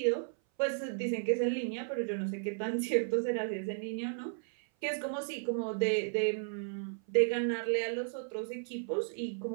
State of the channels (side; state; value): left; silent; 55 dB below the other